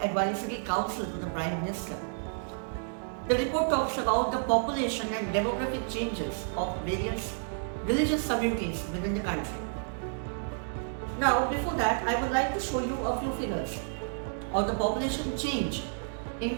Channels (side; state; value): left; silent; digital silence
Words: Advisory Council to the Prime Minister. The report talks about the population and demographic changes of various religious communities within the country. Now, before that, I would like to show you a few figures of the population change in